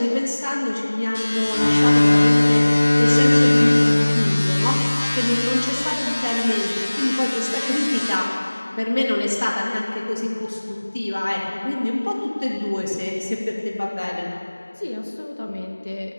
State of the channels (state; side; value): inverted; both; correlation -1.00